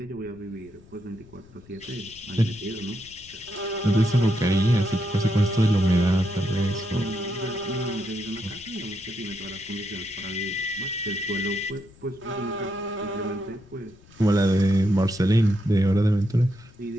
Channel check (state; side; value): noise; left; rumble, 24 dB below the sound